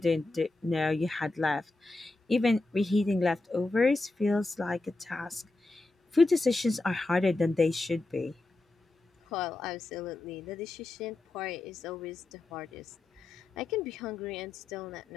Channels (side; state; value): right; quieter; 3.0 dB